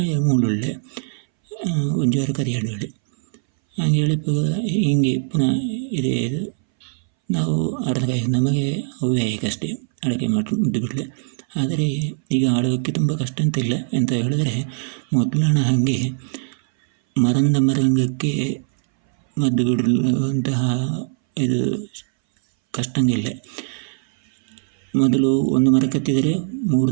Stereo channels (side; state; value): left; silent; 62 dB below the other